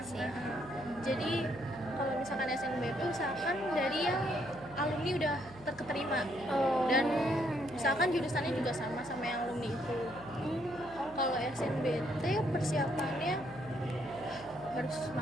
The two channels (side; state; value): left; noise; hum, 20 dB below the sound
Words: sih. Jadi kalau misalkan SNBP usahakan dari yang alumni udah terketerima Oh. dan usahakan jurusannya juga sama yang alumni itu. Kalau SNBT persiapannya harus